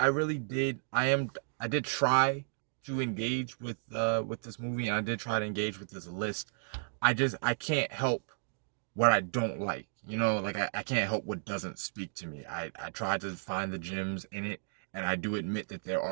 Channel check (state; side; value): silent; left; digital silence